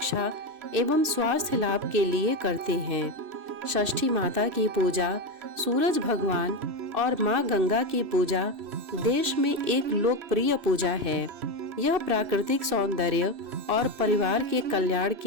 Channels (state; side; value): late; left; 2.6 ms